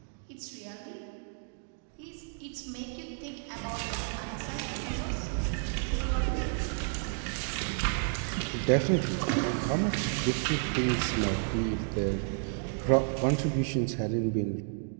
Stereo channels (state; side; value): silent; left; 56 dB below the other